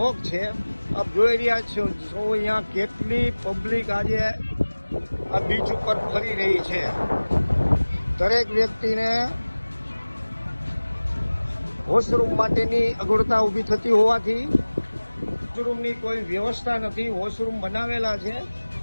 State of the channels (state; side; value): inverted; both; correlation -1.00